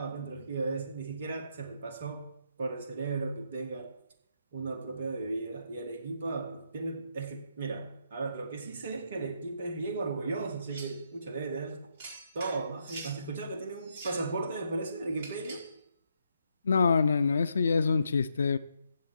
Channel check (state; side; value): inverted; both; correlation -0.78